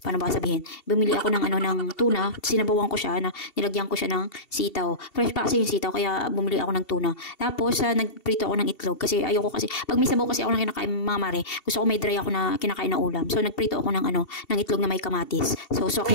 Paano ba sabihin? Bumili ako ng tuna, sinabawan ko siya, nilagyan ko siya ng sitaw. Fresh pa kasi yung sitaw, kaya bumili ako ng tuna. Tapos, nagprito ako ng itlog kasi ayoko kasi, pag may sabaw kasi ako na kinakain mga mare, gusto ko may dry ako na kinakain na ulam. So, nagprito ako ng itlog na may kamatis. So, sok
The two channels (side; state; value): right; late; 2.7 ms